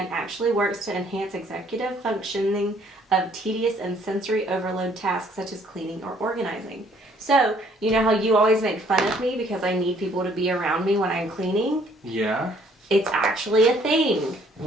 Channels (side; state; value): both; normal; correlation 0.62